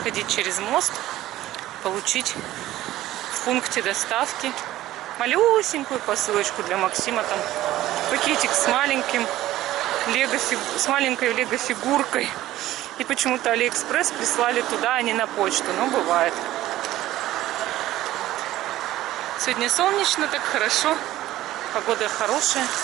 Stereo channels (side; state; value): left; quieter; 15.0 dB